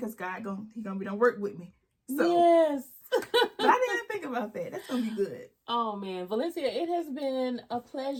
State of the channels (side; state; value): both; identical; correlation 1.00